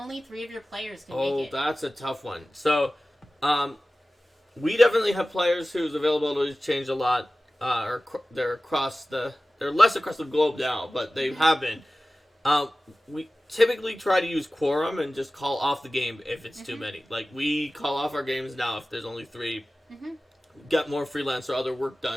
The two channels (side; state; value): both; normal; correlation 0.96